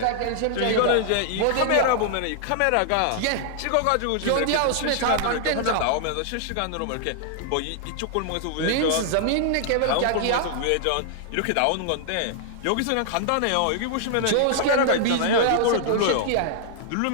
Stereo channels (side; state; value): both; different; correlation 0.00